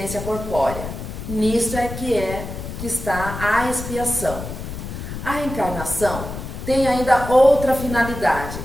corpórea. Nisto é que está a expiação. A reencarnação tem ainda outra finalidade,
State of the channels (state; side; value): noise; left; rumble, 8 dB below the sound